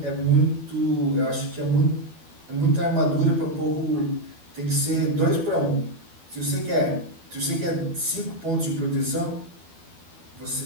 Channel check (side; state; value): left; late; 12 ms